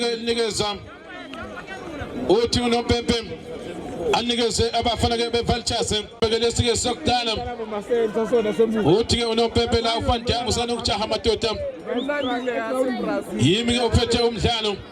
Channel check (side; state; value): both; identical; correlation 1.00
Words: linikeza uthi unompempe anikeze abafana ke beVultures bekelesike sokudala uthi ke unompempe la uFandam usana ukujaha madoda yimi ke uphethe umdlalo